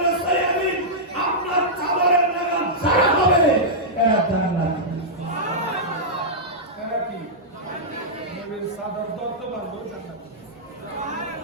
সায়াবি আপনার চাদরের লাগাম যারা হবে এরা জান্নাত এরা কি নবীর সাদর ধরতে পারলো জান্নাত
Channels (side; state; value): both; normal; correlation -0.10